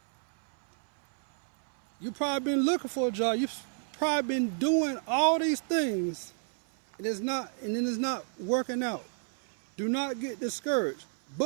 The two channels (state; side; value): silent; left; 58 dB below the other